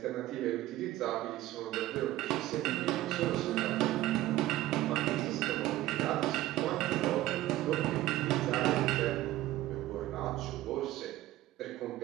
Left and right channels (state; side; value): quieter; left; 15.6 dB